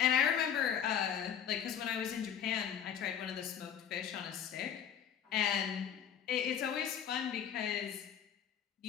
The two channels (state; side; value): quieter; right; 8.7 dB